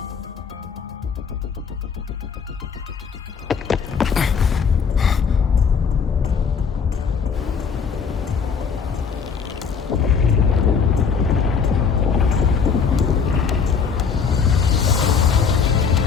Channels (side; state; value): right; quieter; 6.1 dB